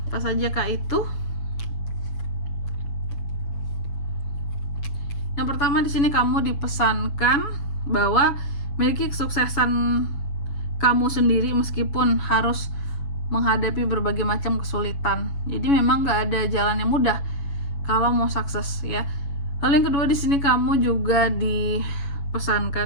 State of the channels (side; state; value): right; late; 7.1 ms